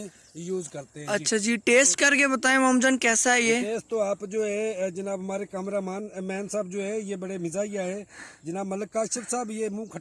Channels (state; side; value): identical; both; correlation 1.00